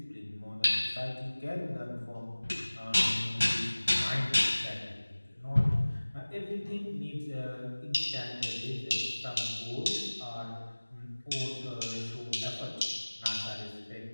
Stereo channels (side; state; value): both; inverted; correlation -1.00